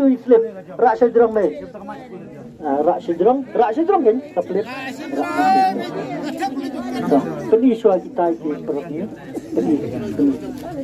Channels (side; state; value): both; identical; correlation 1.00